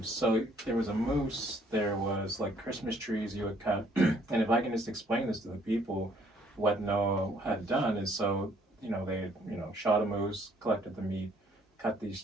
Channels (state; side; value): normal; both; correlation 0.63